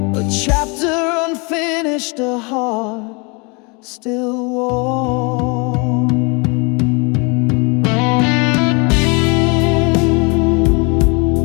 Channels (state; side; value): quieter; right; 31.0 dB